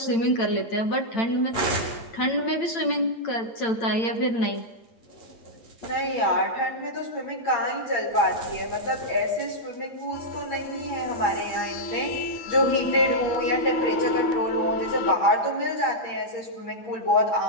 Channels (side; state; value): right; late; 8.9 ms